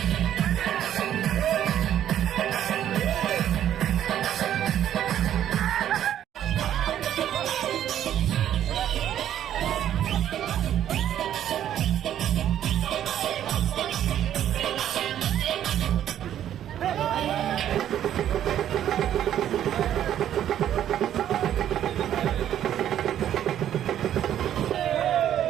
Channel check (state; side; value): quieter; left; 10.9 dB